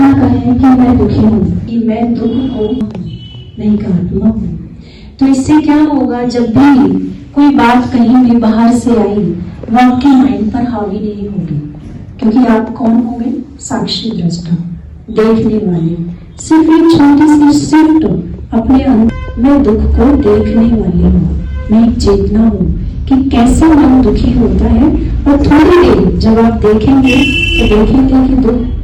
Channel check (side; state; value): both; identical; correlation 1.00